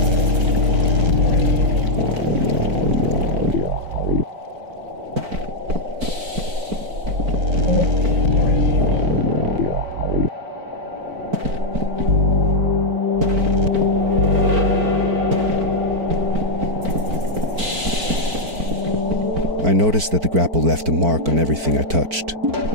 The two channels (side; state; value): left; late; 4.5 ms